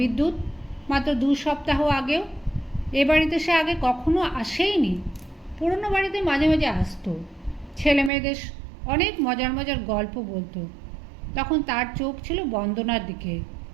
মাত্র 2 সপ্তাহ আগেও? এ বাড়িতে সে আগে কখনো আসেইনি। পুরনো বাড়িতে মাঝে মাঝে আসতো, ছেলে মেয়েদের অনেক মজার মজার গল্প বলতো। তখন তার চোখ ছিল বন্দনার দিকে।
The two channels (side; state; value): left; drops out; at 8.1 s